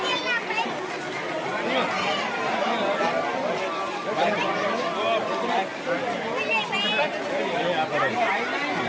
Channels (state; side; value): identical; both; correlation 1.00